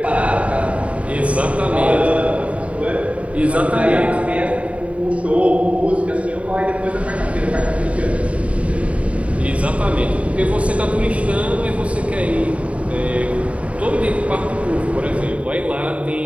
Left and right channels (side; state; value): left; late; 0.065 ms